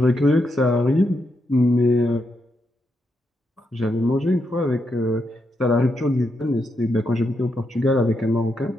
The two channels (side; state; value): both; normal; correlation 0.82